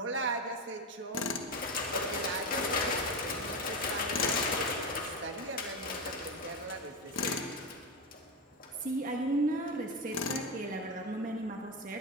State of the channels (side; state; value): both; normal; correlation 0.15